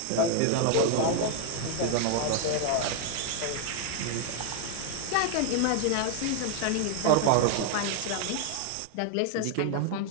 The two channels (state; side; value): different; both; correlation 0.00